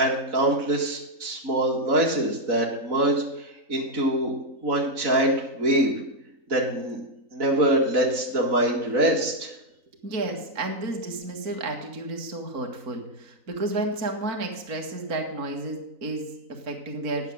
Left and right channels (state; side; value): late; left; 3.9 ms